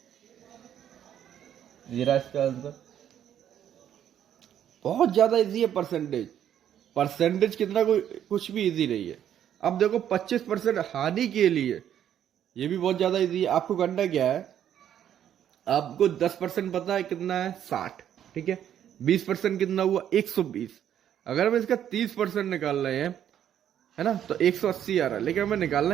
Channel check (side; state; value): left; quieter; 10.1 dB